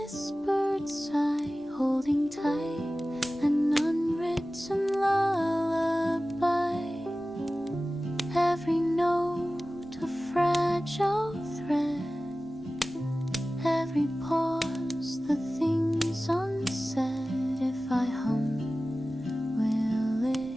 sigh, holding tight an unwritten lullaby. Every note a fragile thread, every pause the things unsaid. If I hum, will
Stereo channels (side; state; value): both; normal; correlation 0.96